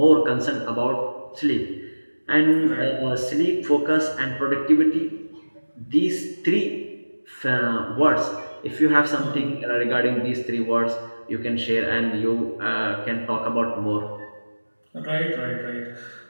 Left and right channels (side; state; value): both; inverted; correlation -1.00